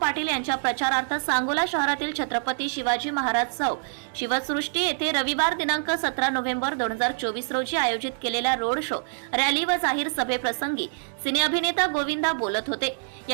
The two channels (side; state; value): left; silent; digital silence